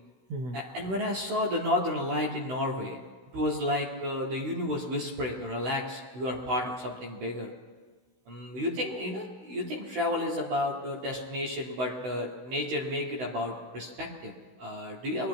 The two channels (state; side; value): late; left; 16 ms